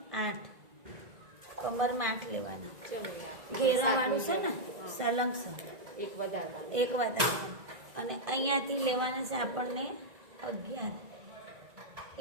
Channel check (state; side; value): late; left; 1.9 ms